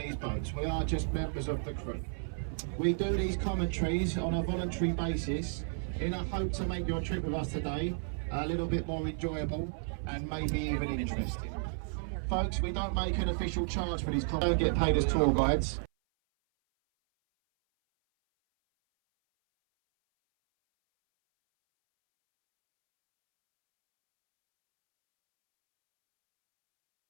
boats. We are just members of the crew. We do these commentaries on a voluntary basis in a hope to make your trip with us today a little bit more enjoyable and maybe even interesting. Folks, we don't make an official charge for these commentaries. We don't get paid as tour guides.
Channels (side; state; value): left; silent; 56 dB below the other